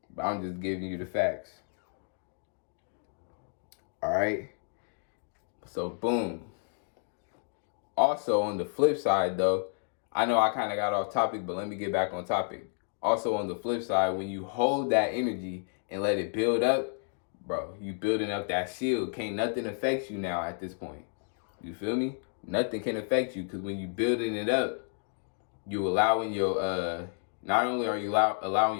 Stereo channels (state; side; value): silent; right; 57 dB below the other